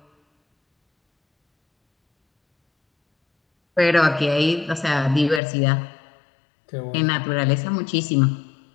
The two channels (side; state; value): right; drops out; at 5.4 s